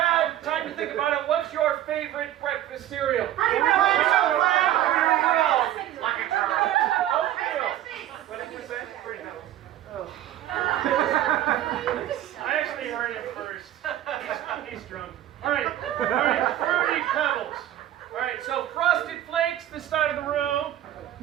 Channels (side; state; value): left; quieter; 12.7 dB